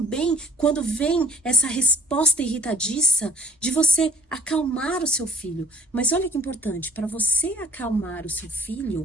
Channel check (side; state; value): both; normal; correlation 0.56